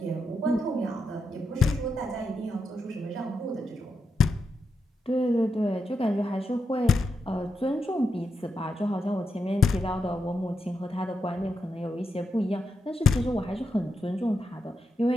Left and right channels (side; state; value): both; normal; correlation 0.85